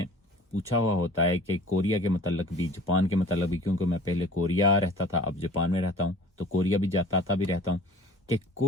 पूछा हुआ होता है कि कोरिया के मतलब भी, जापान के मतलब भी, क्योंकि मैं पहले कोरिया रहता था, अब जापान में रहता हूँ, तो कोरिया भी जाता आता भी रहता हूँ, कि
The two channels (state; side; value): normal; both; correlation 0.46